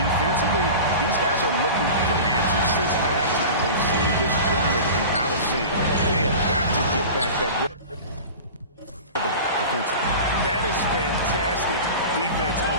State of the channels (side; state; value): both; inverted; correlation -0.34